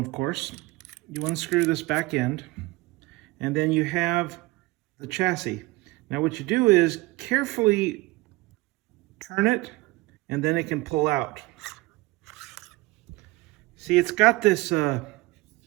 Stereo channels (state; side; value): quieter; left; 21.5 dB